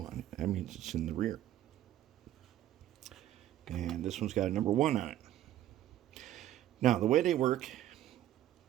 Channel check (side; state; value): left; quieter; 12.7 dB